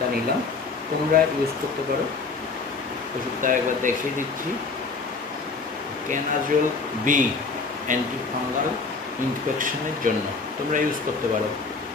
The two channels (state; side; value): quieter; right; 4.3 dB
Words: নিলাম। তোমরা ইউজ করতে পারো। ওষুধটা একবার দেখিয়ে দিচ্ছি, ক্যানাজোল বি, অ্যান্টি ফাঙ্গাল ইনফেকশনের জন্য তোমরা ইউজ করতে পারো।